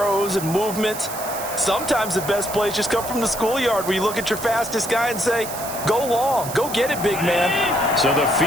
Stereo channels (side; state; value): right; noise; hiss, 10 dB below the sound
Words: and movements. Sometimes the best plays just come from the schoolyard where you look at your fastest guy and say, go long, go get it, big man. So the